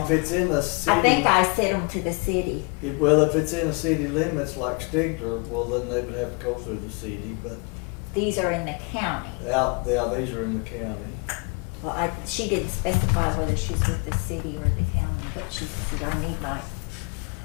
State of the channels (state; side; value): quieter; right; 31.8 dB